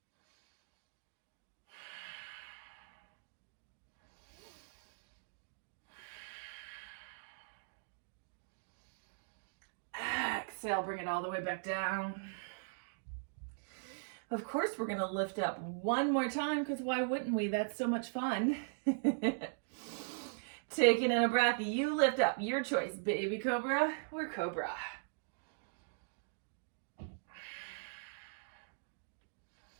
Exhale, bring it all the way back down. Of course, we're gonna lift up one more time because why wouldn't we? That's so much fun. Taking in a breath, you lift up. Your choice, baby cobra or cobra.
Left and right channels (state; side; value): silent; left; digital silence